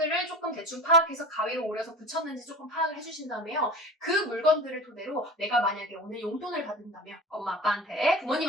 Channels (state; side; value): normal; both; correlation 0.34